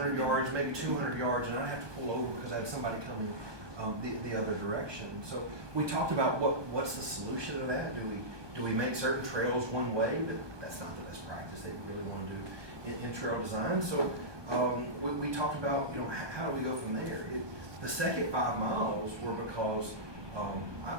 yards, maybe 200 yards, and I'd have to pull over because I had somebody coming the other direction. So we talked about what's the solution to that. Do we make certain trails one way? But that's not the best practice that we really want to do in trail design. So we talked about how do we go from there. The second 5 miles were because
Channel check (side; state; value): left; late; 1.2 ms